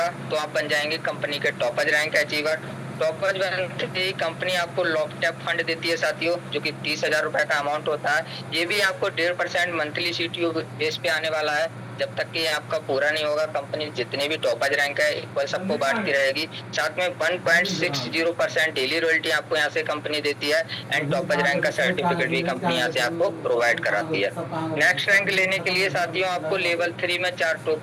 तो आप बन जाएंगे कंपनी के टॉपज रैंक अचीवर। टॉपज बनते ही कंपनी आपको लॉकटैप फंड देती है साथियों जो कि 30,000 रुपए का अमाउंट होता है। ये भी आपको 1.5% मंथली सीटीओ बेस पे आने वाला है। जब तक कि आपका पूरा नहीं होगा कंपनी जितने भी टॉपर्स रैंक है इक्वल सबको बांटती रहेगी। साथ में 1.60% डेली रॉयल्टी आपको यहाँ से कंपनी देती है एंड टॉपर्स रैंक का सर्टिफिकेट भी कंपनी यहाँ से आपको प्रोवाइड कराती है। नेक्स्ट रैंक लेने के लिए साथियों आपको लेवल 3 में 4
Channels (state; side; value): identical; both; correlation 1.00